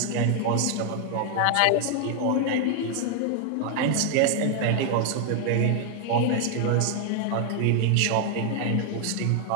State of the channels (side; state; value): both; different; correlation 0.00